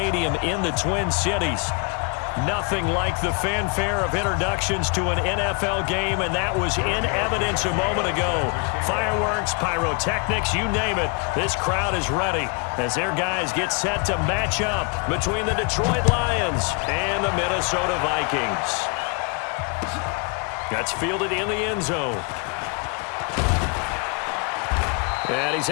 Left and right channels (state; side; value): quieter; right; 34.4 dB